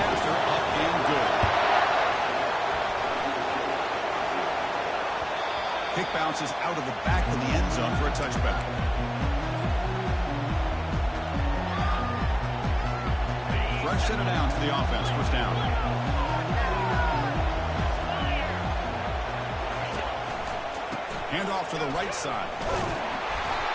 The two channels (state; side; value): identical; both; correlation 1.00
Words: after, up and good. Kick bounces out of the back of the end zone for a touchback. Fresh set of downs for the offense, first down. Hand off to the right side.